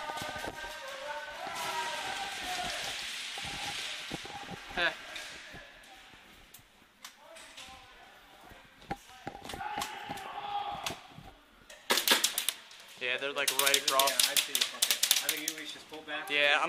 Heh. Yeah, they're like right across. Yeah, I see. Okay. I think we should just pull back. Yeah,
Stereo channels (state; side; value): identical; both; correlation 1.00